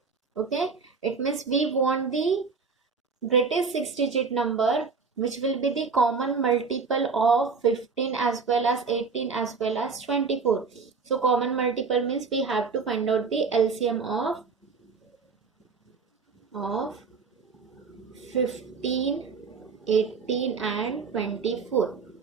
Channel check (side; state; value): left; quieter; 5.0 dB